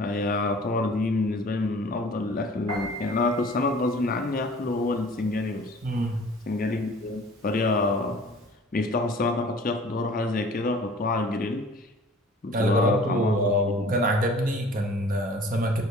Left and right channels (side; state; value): both; normal; correlation 0.48